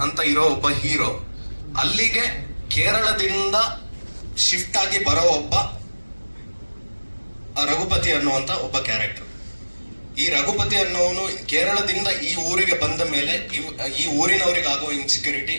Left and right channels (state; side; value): inverted; both; correlation -1.00